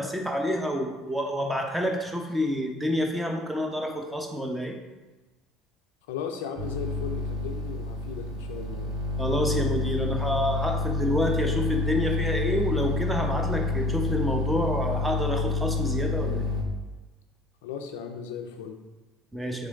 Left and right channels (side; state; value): both; normal; correlation 0.51